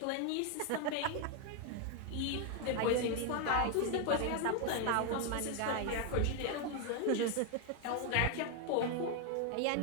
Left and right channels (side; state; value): both; different; correlation 0.01